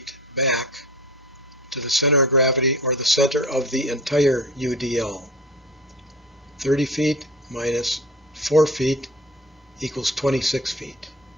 back to the center of gravity, or the center of the entire UDL. 30 feet minus 4 feet equals 26 feet.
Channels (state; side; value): normal; both; correlation 0.37